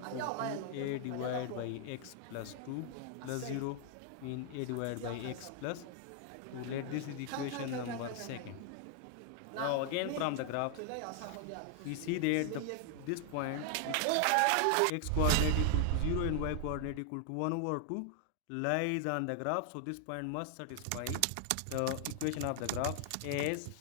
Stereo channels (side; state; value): both; different; correlation 0.00